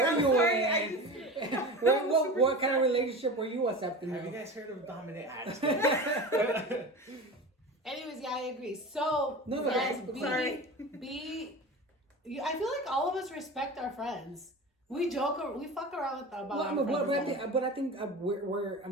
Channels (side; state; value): both; normal; correlation 0.31